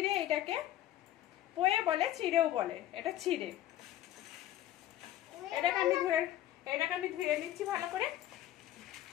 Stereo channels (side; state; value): right; quieter; 13.2 dB